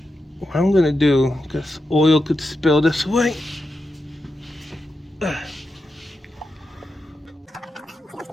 What I'm gonna do, because oil could spill this way.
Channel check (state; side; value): normal; both; correlation 0.88